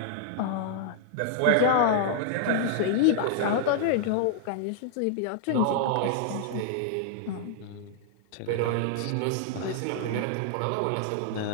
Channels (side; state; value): both; different; correlation -0.01